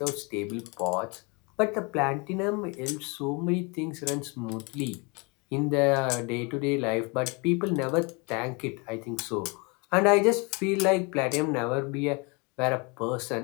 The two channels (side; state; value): right; quieter; 29.9 dB